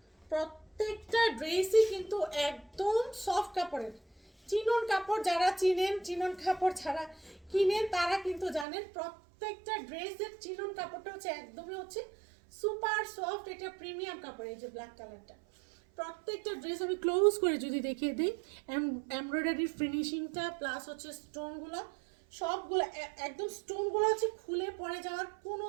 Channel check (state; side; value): drops out; left; at 8.7 s